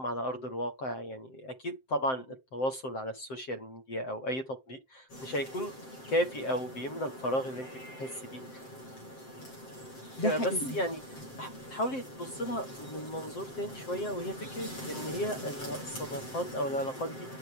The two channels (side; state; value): right; late; 7.7 ms